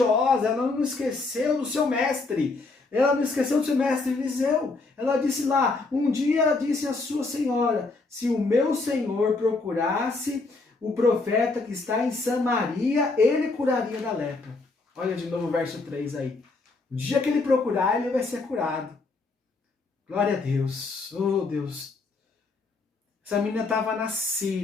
ela não esqueceu do seu mestre. Ela não esqueceu do seu mestre Eliseu. Ela disse lá, um dia disse a sua senhora, se o meu senhor procurasse o profeta que está em Samaria, ele curaria da lepra. Olha de novo o verso 3 aí. O dia que ele procurar, ele vai ser curado. Glória a Deus. Oh, Deus. Essa menina estava na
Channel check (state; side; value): quieter; right; 3.6 dB